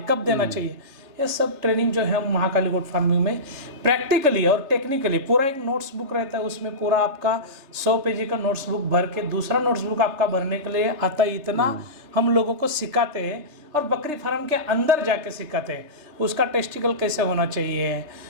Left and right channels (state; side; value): late; left; 3.3 ms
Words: कब देना चाहिए, ये सब ट्रेनिंग जो है हम महाकाली गोट फार्मिंग में प्रैक्टिकली और टेक्निकली, पूरा एक नोट्स बुक रहता है, उसमें पूरा आपका 100 पेजी का नोट्स बुक भर के दूसरा नोट्स बुक आपका भरने के लिए आता है। इतना हम लोगों को सिखाते हैं और बकरी फार्म के अंदर जाके सिखाते हैं। उसका टेस्टिकल कैसे होना चाहिए,